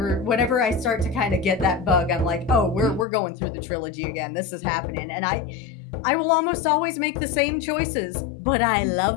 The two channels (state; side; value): drops out; right; at 3.1 s